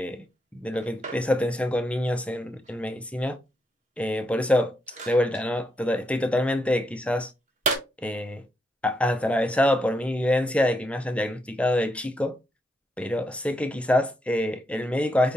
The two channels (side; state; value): both; normal; correlation 0.80